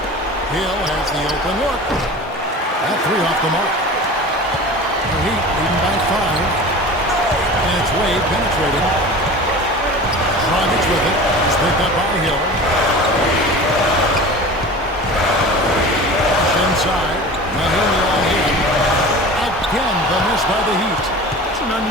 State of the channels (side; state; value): both; normal; correlation 0.36